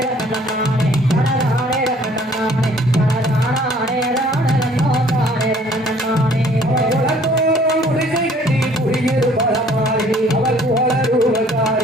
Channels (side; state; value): both; normal; correlation 0.57